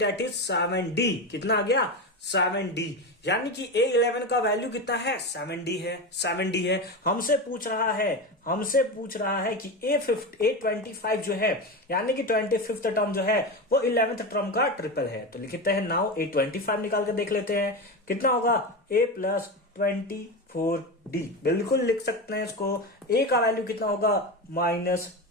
is 7D। कितना आ गया? 7D। यानी कि A11 का वैल्यू कितना है? 7D है। हमसे पूछ रहा है कि A25 जो है, यानी कि 25th टर्म जो है वो 11th टर्म का ट्रिपल है। तो लिखते हैं नाउ A25 निकाल कर देख लेते हैं कितना होगा? A plus 24D। बिल्कुल लिख सकते हैं इसको। A का वैल्यू कितना होगा? माइनस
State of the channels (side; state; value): both; normal; correlation 0.20